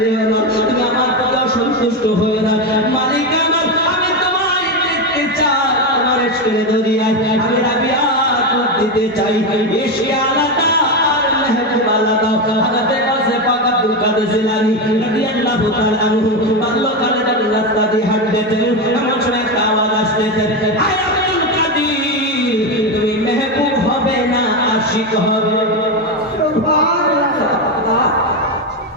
যেও না, তুমি আমার প্রতি অসন্তুষ্ট হয়ে না। মালিক আমার, আমি তোমায় দেখতে চাই, তোমার ইশকের দরিয়ায় আমি রাবিয়া দিতে চাই। ইশকে আলাদা আর মেহবুব আলাদা। হযরত গাউসে পাক আব্দুল কাদের জিলানী রাদিয়াল্লাহু তাআলা আনহু বাল্যকালে যখন রাস্তা দিয়ে হাঁটতেন, এমন সময় একটা আওয়াজ আসতেছে, আয় আব্দুল কাদের, তুমি মেহবুব হবে না আশিক হবে।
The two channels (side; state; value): both; normal; correlation 0.12